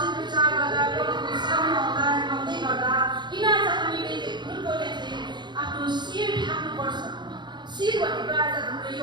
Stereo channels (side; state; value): left; late; 0.21 ms